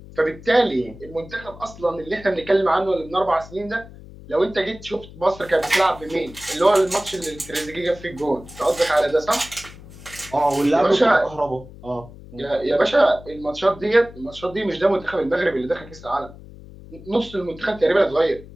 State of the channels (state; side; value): noise; left; hum, 18 dB below the sound